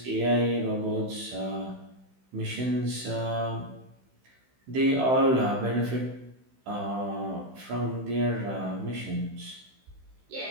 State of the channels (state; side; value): late; left; 16 ms